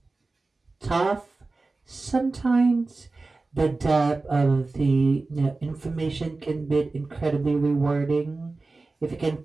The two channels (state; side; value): quieter; left; 3.5 dB